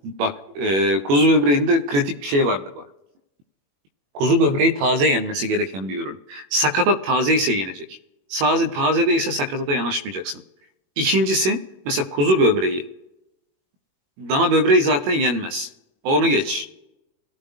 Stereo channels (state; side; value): late; left; 21 ms